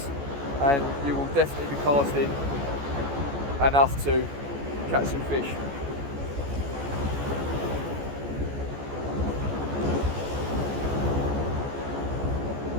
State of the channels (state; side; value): late; left; 14 ms